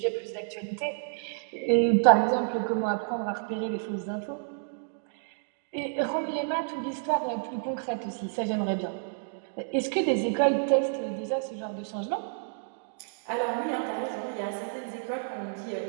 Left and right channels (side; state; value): left; silent; digital silence